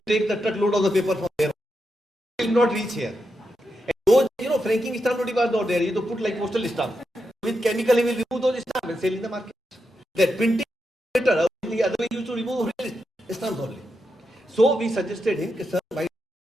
take the truckload of the paper from there. He will not reach here. And those, franking stamp was not there. You have to put like postal stamp. With chemical, he will remove those stamps and sell in the market. That printing better. The other way you used to remove real stamps only. So we suggested him, sir, buy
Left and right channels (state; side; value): normal; both; correlation 0.86